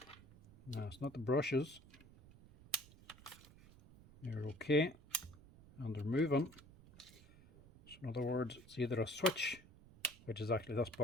No, it's not the brushes. They're okay and they're moving. So in other words, it's either a switch, which is actually this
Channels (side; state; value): right; noise; rumble, 21 dB below the sound